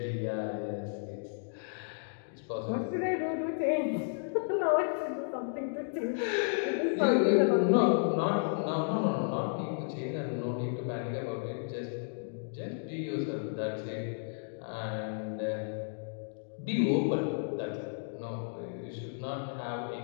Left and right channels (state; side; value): silent; right; digital silence